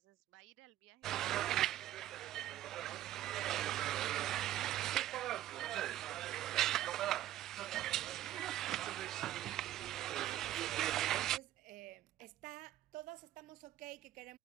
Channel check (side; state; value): left; quieter; 13.4 dB